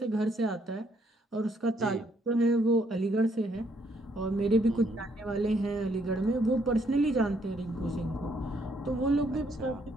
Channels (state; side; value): normal; both; correlation 0.70